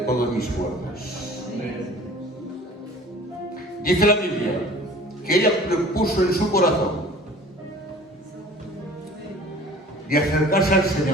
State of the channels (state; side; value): normal; both; correlation 0.46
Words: mis fuerzas. Dice la Biblia que ella propuso en su corazón de acercarse al